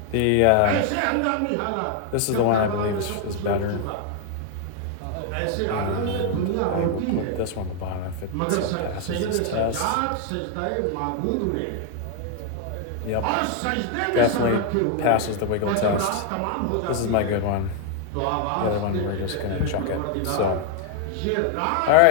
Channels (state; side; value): different; both; correlation 0.00